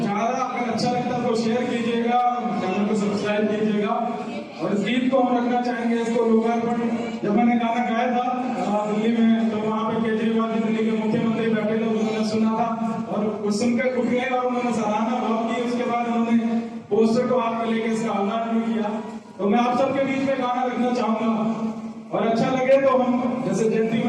अगर अच्छा लगता है तो शेयर कीजिएगा, चैनल को सब्सक्राइब कीजिएगा। और इस गीत को हम रखना चाहेंगे, इसको लोकार्पण जब मैंने गाना गाया था दिल्ली में, तो वहाँ पे केजरीवाल जी दिल्ली के मुख्यमंत्री बैठे थे, उन्होंने सुना था और कुछ सुनकर उठ गए और उन्होंने सराहना भाव की। उसके बाद उन्होंने पोस्टर को हाथ में लेकर इसका आह्वान भी किया। तो मैं आप सबके बीच में गाना रखना चाहूंगा, और अच्छा लगे तो हम जैसे जयंती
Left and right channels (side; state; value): both; identical; correlation 1.00